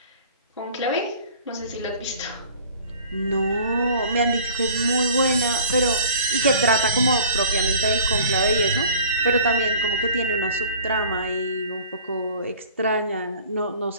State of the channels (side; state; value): both; inverted; correlation -0.48